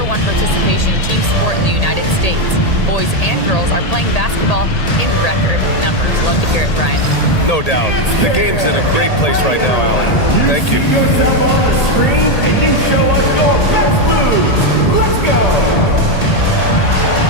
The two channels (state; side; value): late; right; 1.8 ms